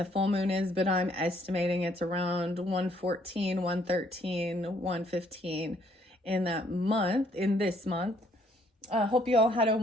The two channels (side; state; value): both; normal; correlation 0.66